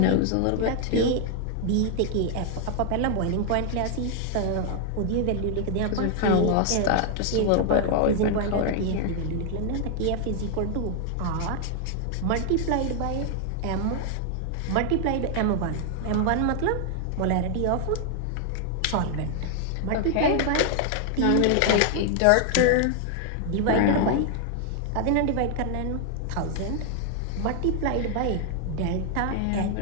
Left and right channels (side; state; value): both; different; correlation 0.00